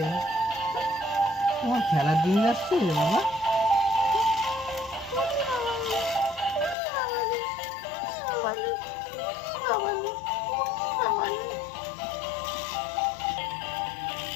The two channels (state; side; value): drops out; right; at 6.8 s